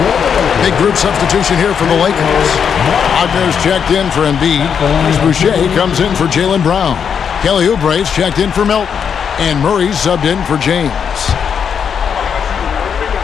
Big group substitution here for the Lakers. Wagner's checked in for Embiid. Boucher comes in for Jaylen Brown. Kelly Oubre's checked in for Milton. And Murray's subbed in for James.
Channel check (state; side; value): quieter; right; 7.2 dB